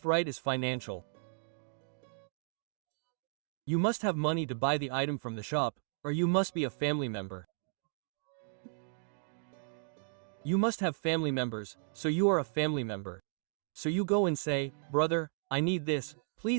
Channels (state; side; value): silent; left; digital silence